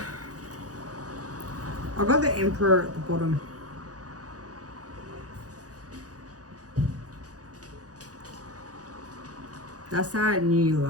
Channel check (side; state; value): left; late; 0.67 ms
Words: I got the Emperor at the bottom. That's that new